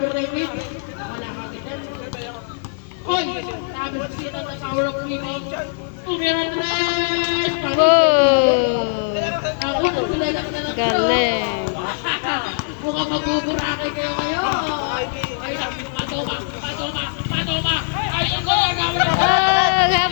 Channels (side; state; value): right; silent; digital silence